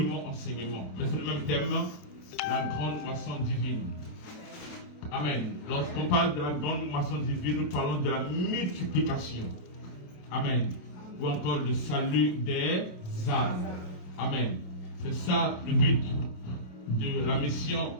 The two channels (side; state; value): right; late; 27 ms